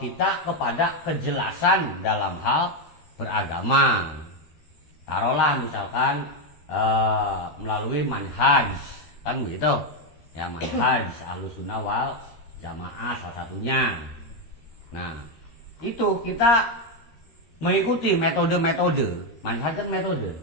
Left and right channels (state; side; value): late; right; 13 ms